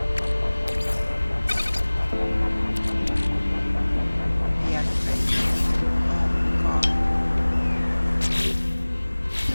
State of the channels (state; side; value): inverted; both; correlation -1.00